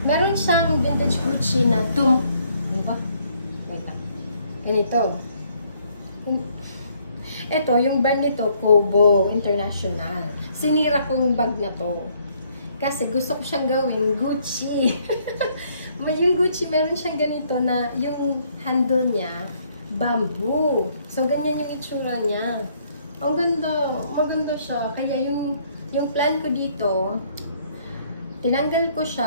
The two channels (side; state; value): both; inverted; correlation -0.66